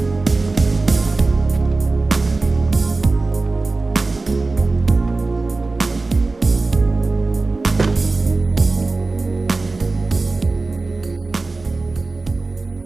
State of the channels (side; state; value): left; quieter; 3.5 dB